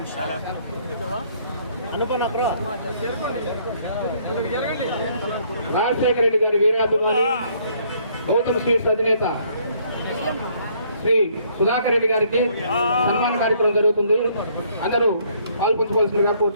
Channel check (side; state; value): both; inverted; correlation -0.65